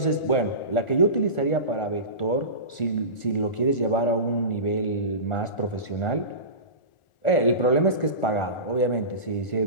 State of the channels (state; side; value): late; right; 1.4 ms